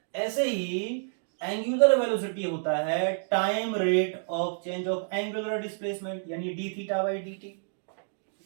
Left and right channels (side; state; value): left; silent; digital silence